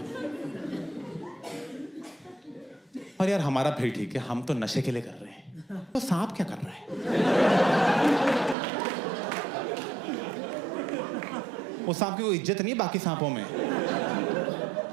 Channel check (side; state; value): left; drops out; at 8.6 s